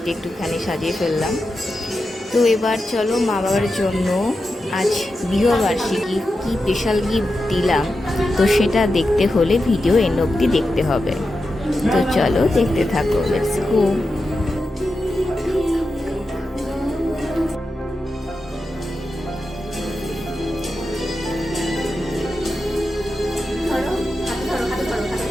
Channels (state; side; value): normal; both; correlation 0.90